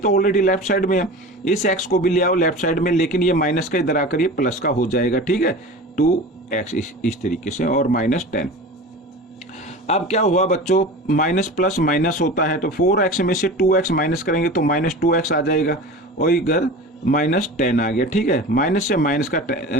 ऑलरेडी लेफ्ट साइड में है, इस x को भी ले आओ लेफ्ट साइड में, लेकिन ये माइनस का इधर आकर ये प्लस का हो जाएगा, ठीक है। 2x इस तरीके से और माइनस 10। अब क्या हुआ बच्चों, माइनस प्लस माइनस होता है, तो 4x में से 2x माइनस करेंगे तो माइनस 2x आ जाएगा, और इधर माइनस 10 आ गया, ठीक है। माइनस से माइनस का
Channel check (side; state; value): both; normal; correlation 0.34